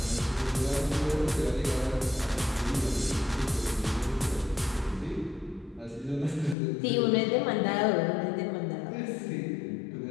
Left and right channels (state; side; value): drops out; right; at 6.6 s